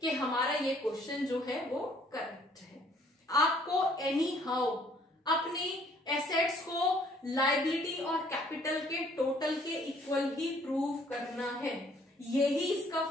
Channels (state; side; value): normal; both; correlation 0.61